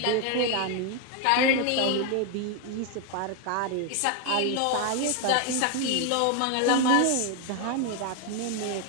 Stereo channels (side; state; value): both; different; correlation 0.01